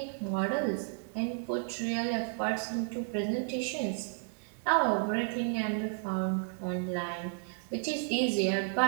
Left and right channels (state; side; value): silent; left; 56 dB below the other